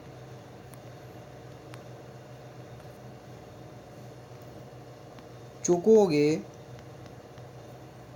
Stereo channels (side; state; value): both; identical; correlation 1.00